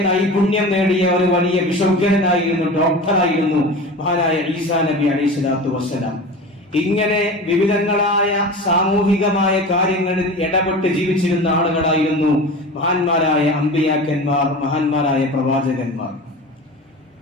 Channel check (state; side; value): normal; both; correlation 0.33